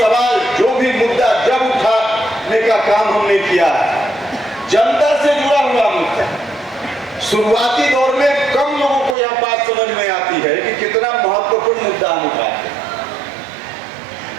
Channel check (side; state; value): left; drops out; at 9.2 s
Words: जो भी मुद्दा जब उठाने का काम हमने किया है, जनता से जुड़ा हुआ मुद्दा। शुरुआती दौर में कम लोगों को यह बात समझ में आती है कि कितना महत्वपूर्ण मुद्दा हम उठाते हैं,